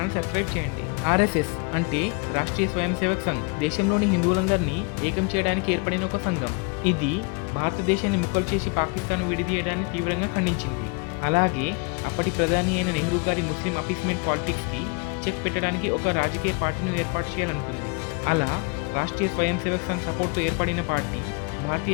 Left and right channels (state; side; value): quieter; right; 32.5 dB